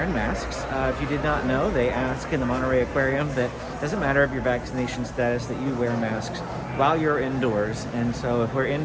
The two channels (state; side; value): identical; both; correlation 1.00